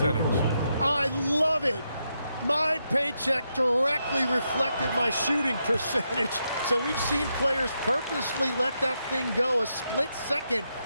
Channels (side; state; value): both; inverted; correlation -0.82